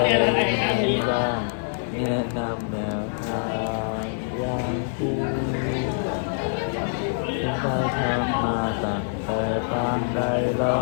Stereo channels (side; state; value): right; silent; digital silence